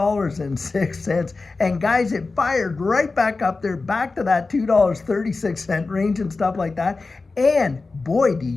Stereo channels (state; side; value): quieter; right; 3.8 dB